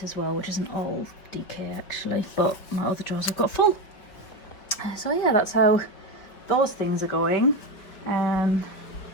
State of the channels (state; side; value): late; right; 4.9 ms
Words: as well, which isn't all DK actually, but my other drawers I've got full. So yeah, that's how those things are going.